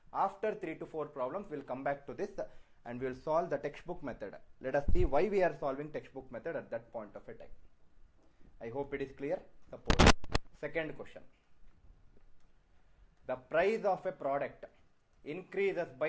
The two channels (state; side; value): identical; both; correlation 1.00